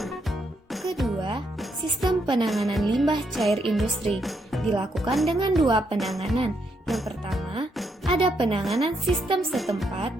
Kedua, sistem penanganan limbah cair industri dilakukan dengan 2 penanganan. Yang pertama, ada penanganan sistem setempat,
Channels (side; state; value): both; normal; correlation 0.77